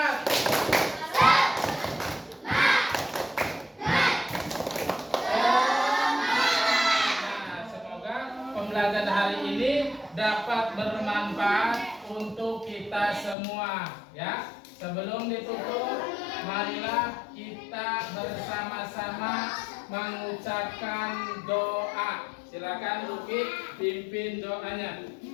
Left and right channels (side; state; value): right; drops out; at 13.4 s